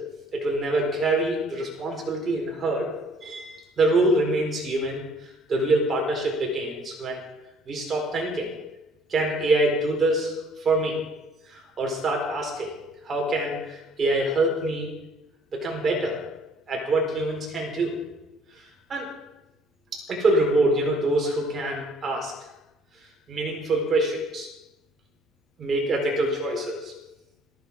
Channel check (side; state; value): both; normal; correlation 0.58